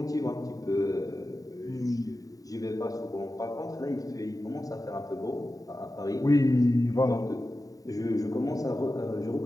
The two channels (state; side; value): late; right; 0.17 ms